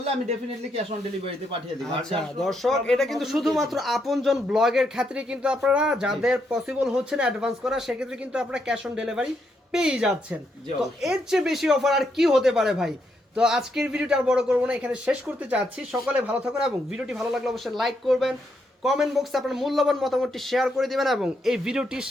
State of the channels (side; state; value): both; normal; correlation 0.78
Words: আমি ডেফিনেটলি ক্যাশ অন ডেলিভারিতে পাঠিয়ে দিব। আর আচ্ছা যার দর্শক এটা কিন্তু শুধুমাত্র আপনজন ব্লগের ক্ষেত্রে কিন্তু আপনারা যাদের পসিবল হচ্ছে না অ্যাডভান্স করা সেক্ষেত্রে কিন্তু আপনারা ক্যাশ অন ডেলিভারি পেয়ে যাচ্ছেন। জি, তো অবশ্যই। এর চেয়ে বেশি অফার আর কি হতে পারে ভাই? তো আজকের ভিডিওটা আর বড় করবো না, এখানে শেষ করতে চাচ্ছি। সকলে ভালো থাকুন এবং ভিডিওটি ভালো লাগলে অবশ্যই লাইক করবেন, কমেন্ট বক্সে আপনার মূল্যবান মতামতটি শেয়ার করে দিবেন এবং এই ভিডিওটি